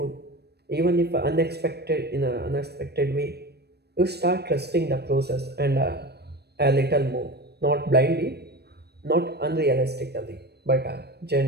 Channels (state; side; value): late; left; 0.47 ms